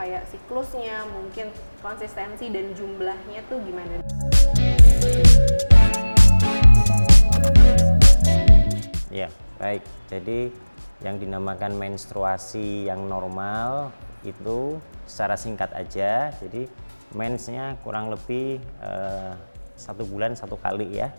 siklusnya, mungkin konsistensi dan jumlahnya tuh gimana? Ya, baik. Jadi yang dinamakan menstruasi yang normal itu secara singkat aja. Jadi mensnya kurang lebih 1 bulan 1 kali ya.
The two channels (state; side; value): inverted; both; correlation -1.00